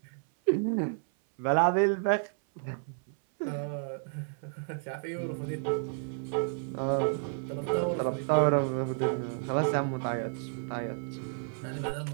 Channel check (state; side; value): silent; left; 57 dB below the other